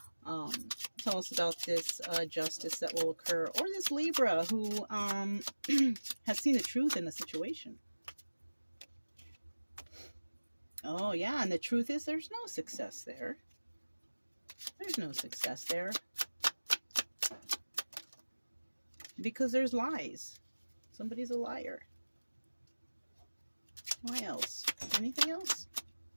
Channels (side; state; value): both; inverted; correlation -1.00